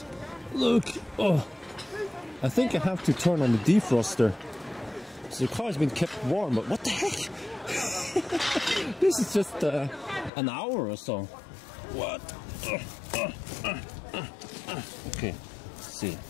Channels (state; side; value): drops out; right; at 10.3 s